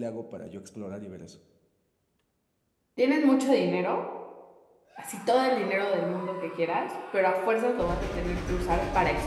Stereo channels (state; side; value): identical; both; correlation 1.00